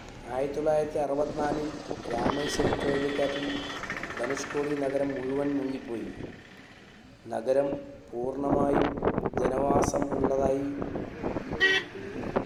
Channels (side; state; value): both; identical; correlation 1.00